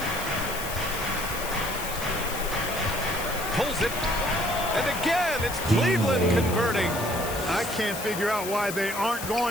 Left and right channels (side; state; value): left; noise; hiss, 8 dB below the sound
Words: Pulls it. And again, it's Cleveland converting. I can't figure out why they aren't